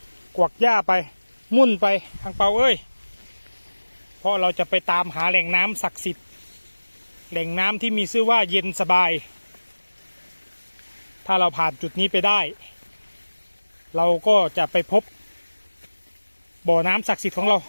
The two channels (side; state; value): both; inverted; correlation -1.00